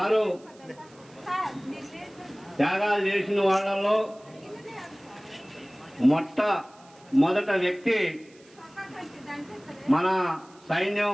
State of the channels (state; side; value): noise; right; hiss, 28 dB below the sound